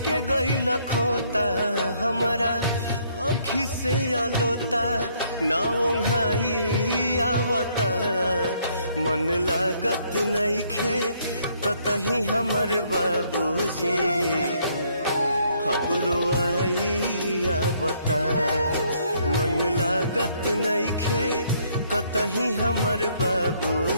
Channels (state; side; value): inverted; both; correlation -0.68